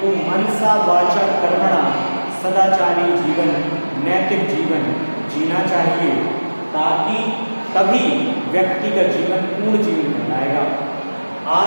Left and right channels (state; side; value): inverted; both; correlation -1.00